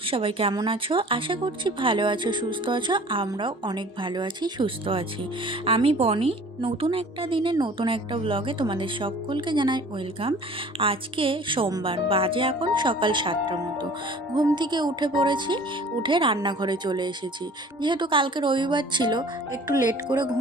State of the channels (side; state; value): both; normal; correlation 0.48